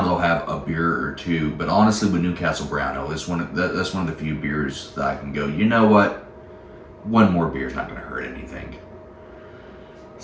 I'll have a beer or two. But honestly, with Newcastle Brown Ale, that's one of the few beers that I can go, you know what? One more beer is not going to hurt anything.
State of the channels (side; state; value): both; identical; correlation 1.00